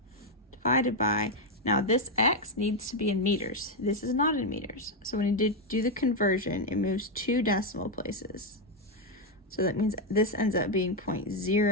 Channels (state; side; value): normal; both; correlation 0.03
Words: divided by, now this x needs to be in meters. This is not in meters. So when you do the conversion, it moves 2 decimal places. So that means this ends up being